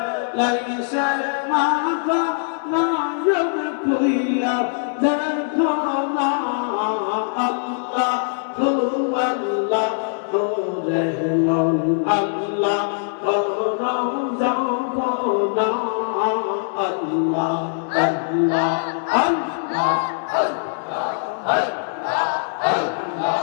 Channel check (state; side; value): silent; right; digital silence